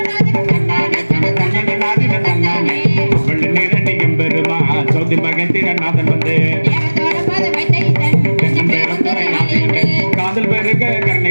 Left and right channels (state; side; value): inverted; both; correlation -1.00